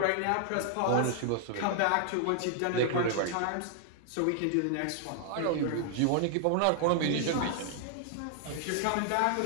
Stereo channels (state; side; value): different; both; correlation 0.00